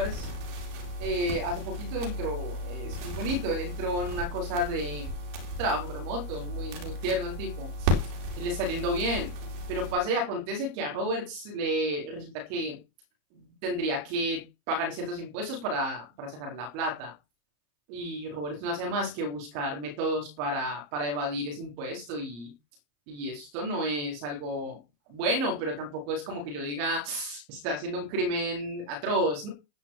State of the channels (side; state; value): left; late; 34 ms